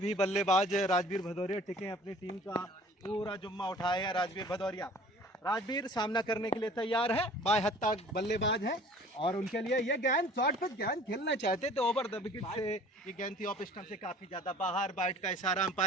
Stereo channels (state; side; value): normal; both; correlation 0.49